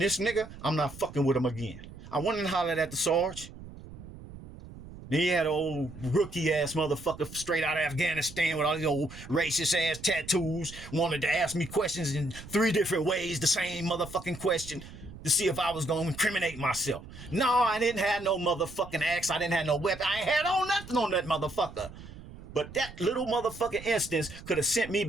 this nigga, I'm not fucking with him again. I went and hollered at the Sarge. Then he had an old rookie ass motherfucker straight out of Afghanistan with all these old racist ass tattoos, wanted to ask me questions in 3 different ways, the same motherfucking question, to see if I was going to incriminate myself. No, I didn't have no motherfucking axe. I didn't have no weapon. I ain't had on nothing on that motherfucker. But that little motherfucking instance could have sent me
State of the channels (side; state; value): right; noise; rumble, 15 dB below the sound